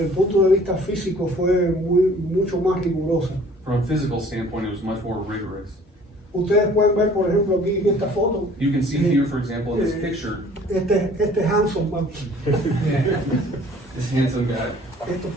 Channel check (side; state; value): both; normal; correlation 0.53